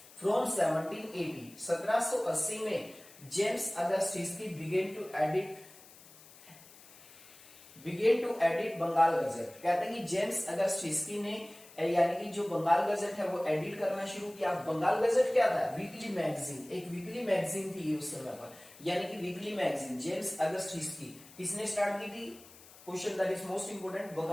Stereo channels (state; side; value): noise; left; hiss, 21 dB below the sound